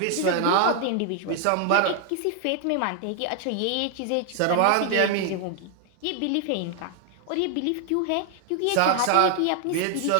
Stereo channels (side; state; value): both; different; correlation 0.00